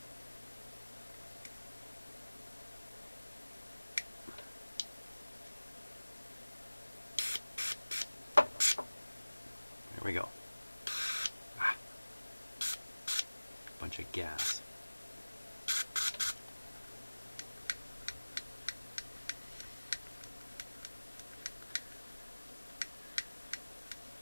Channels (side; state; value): both; inverted; correlation -1.00